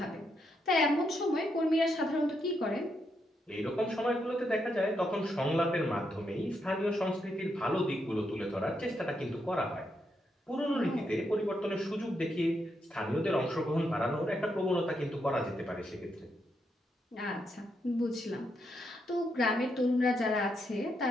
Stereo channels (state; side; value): normal; both; correlation 0.80